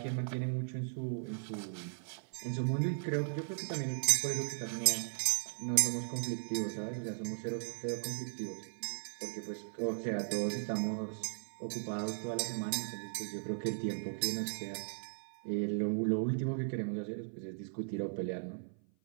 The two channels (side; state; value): left; silent; 53 dB below the other